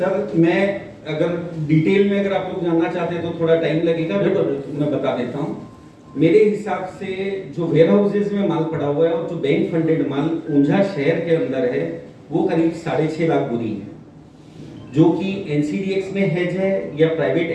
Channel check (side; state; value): both; identical; correlation 1.00